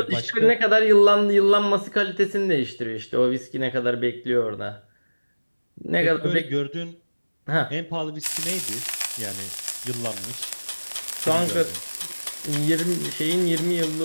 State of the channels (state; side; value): inverted; both; correlation -1.00